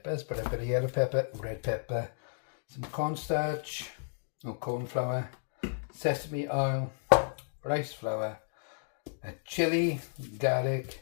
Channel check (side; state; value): right; silent; digital silence